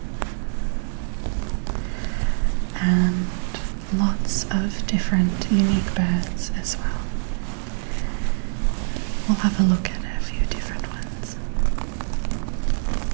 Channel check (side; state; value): left; silent; digital silence